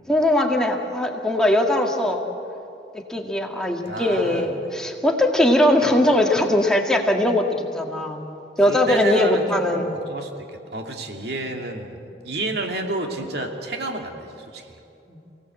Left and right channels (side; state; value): both; normal; correlation 0.62